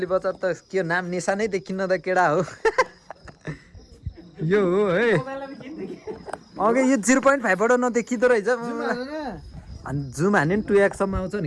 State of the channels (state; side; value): identical; both; correlation 1.00